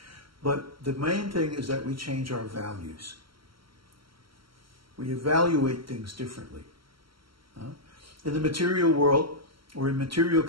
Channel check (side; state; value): left; late; 0.74 ms